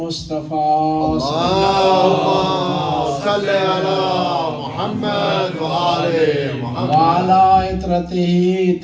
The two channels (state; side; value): identical; both; correlation 1.00